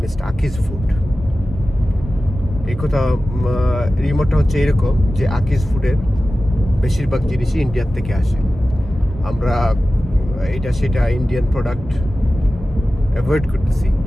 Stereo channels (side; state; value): both; normal; correlation 0.95